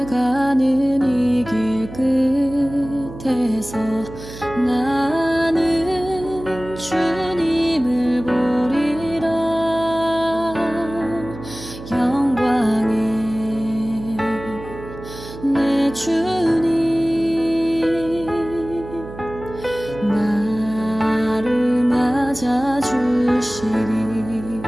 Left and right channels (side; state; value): right; noise; hum, 13 dB below the sound